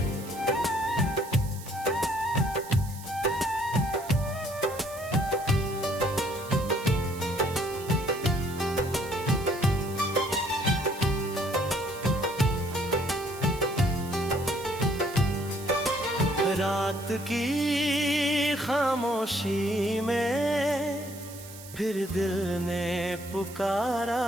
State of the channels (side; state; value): right; noise; hiss, 16 dB below the sound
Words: रात की खामोशी में फिर दिल ने पुकारा